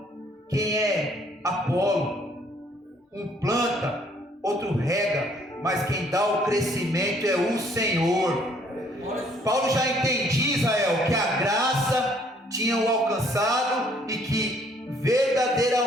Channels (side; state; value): both; normal; correlation 0.63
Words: Quem é Apolo? Um planta, outro rega, mas quem dá o crescimento é o Senhor. Paulo já entendia, Israel, que a graça tinha o alcançado e que